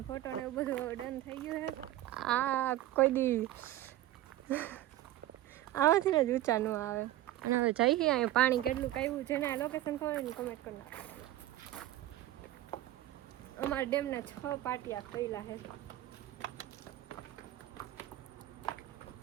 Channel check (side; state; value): left; quieter; 14.4 dB